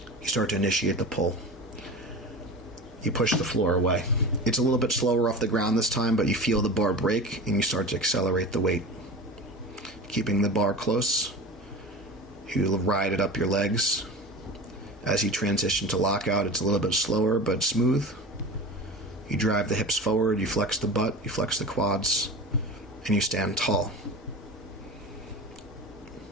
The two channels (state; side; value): normal; both; correlation 0.32